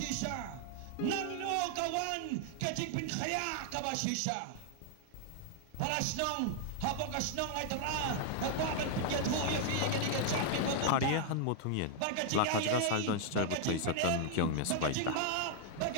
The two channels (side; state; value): both; different; correlation 0.00